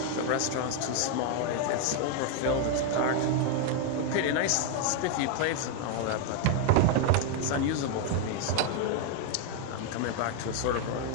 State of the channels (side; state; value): both; different; correlation 0.01